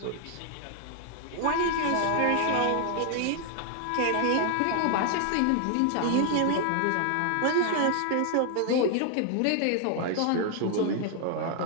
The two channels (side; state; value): both; different; correlation 0.00